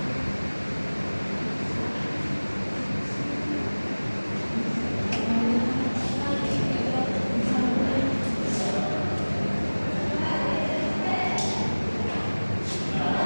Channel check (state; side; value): inverted; both; correlation -1.00